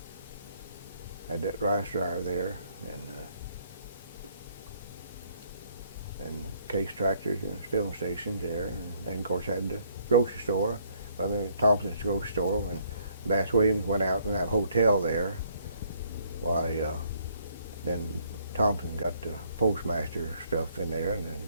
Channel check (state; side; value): inverted; both; correlation -0.67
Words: Had that rice dryer there, and Case tractors and filling stations there, and of course had the grocery store, Brother Thompson's grocery store. When Bass Williams went out in that hotel there, why then Thompson got the postmaster stuff in there, and then